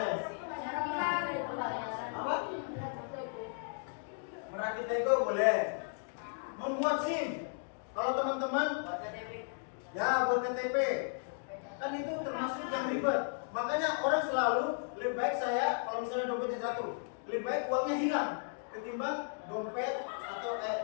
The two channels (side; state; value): right; silent; digital silence